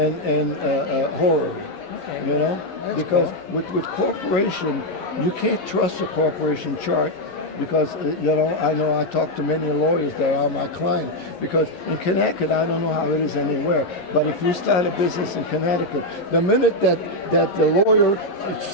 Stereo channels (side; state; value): right; late; 11 ms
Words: horror, Okay. That's because cool. with corporation, you can't trust a corporation chart because, I know I talk to many lawyers that are my client because in Connecticut, I don't know how it is anywhere, but if you start a business in Connecticut, the minute that the lawyer